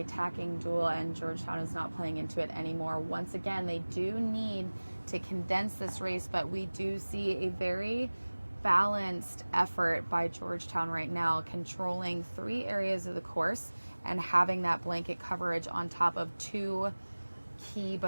tacking duel, and Georgetown is not playing into it anymore. Once again, they do need to condense this race, but we do see a very balanced effort by Georgetown right now, controlling 3 areas of the course and having that blanket coverage on top of 2 key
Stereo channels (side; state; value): both; inverted; correlation -1.00